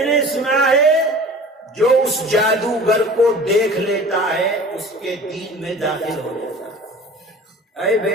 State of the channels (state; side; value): normal; both; correlation 0.42